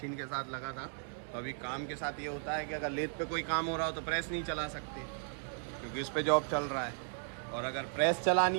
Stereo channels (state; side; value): silent; left; 54 dB below the other